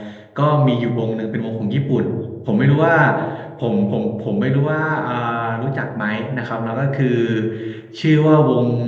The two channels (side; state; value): both; identical; correlation 1.00